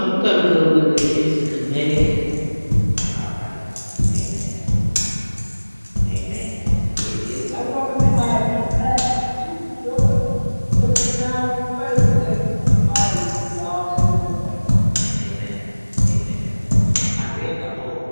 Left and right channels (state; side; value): inverted; both; correlation -1.00